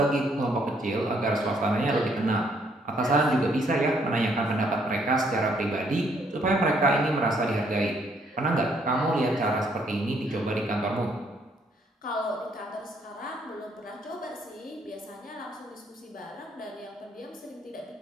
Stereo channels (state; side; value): normal; both; correlation 0.69